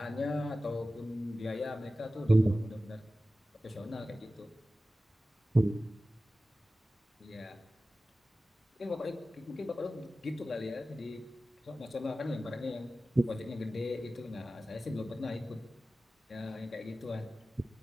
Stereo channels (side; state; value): both; normal; correlation 0.95